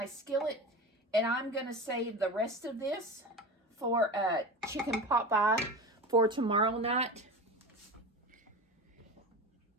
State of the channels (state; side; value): normal; both; correlation 0.28